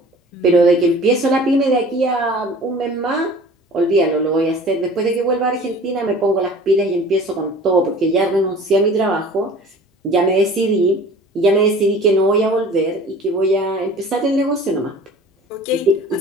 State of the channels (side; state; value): both; normal; correlation 0.44